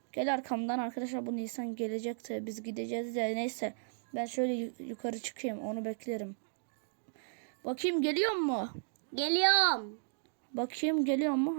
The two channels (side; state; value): left; silent; digital silence